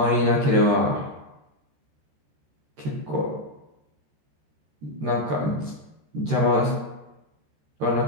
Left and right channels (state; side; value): late; left; 13 ms